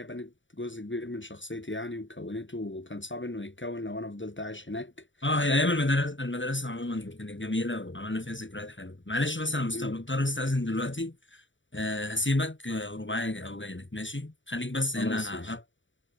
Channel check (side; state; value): right; late; 0.55 ms